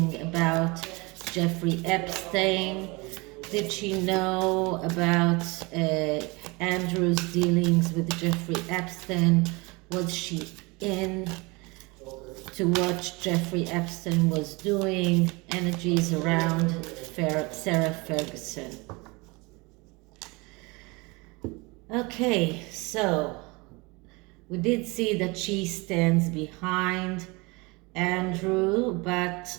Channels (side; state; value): left; quieter; 26.1 dB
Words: about Jeffrey Epstein? Did she know about Andrew's dealings with Jeffrey Epstein? Was she in to what Jeffrey Epstein was doing? Energies around Sarah Ferguson. Okay, so we did see that she stands behind Andrew, but